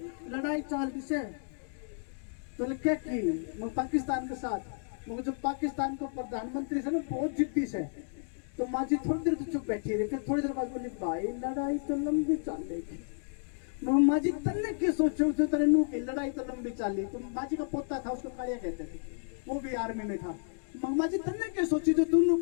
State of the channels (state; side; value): silent; right; digital silence